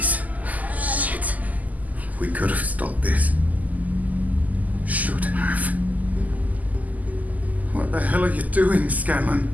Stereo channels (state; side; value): late; left; 0.078 ms